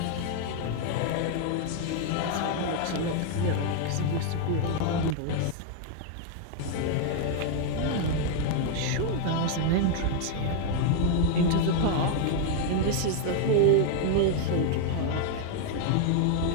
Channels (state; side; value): different; both; correlation 0.00